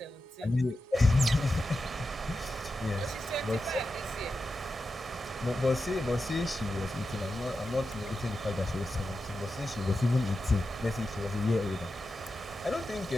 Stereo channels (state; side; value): normal; both; correlation 0.90